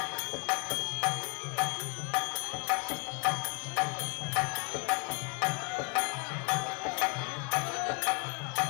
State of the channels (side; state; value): right; quieter; 32.5 dB